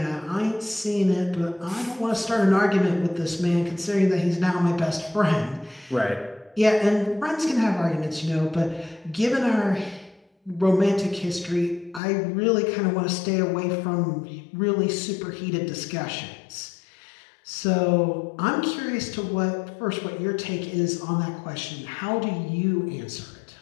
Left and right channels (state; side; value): drops out; right; at 12.0 s